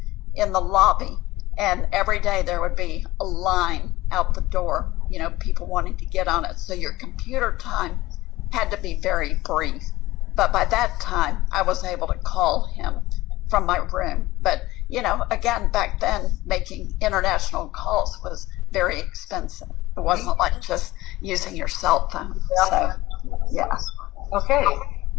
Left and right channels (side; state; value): right; quieter; 18.1 dB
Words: in the lobby, and every day there would be a line out the door, people wanting to get on it. So your computer time had to be very brief. But by that time, I was able to call him from my room. But, again, back then, making international calls was very expensive. It wasn't like just using your cell phone. So, yeah. Okay.